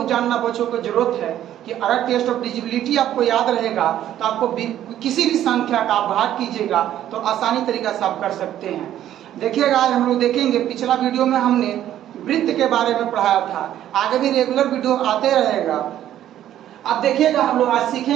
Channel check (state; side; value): quieter; left; 11.8 dB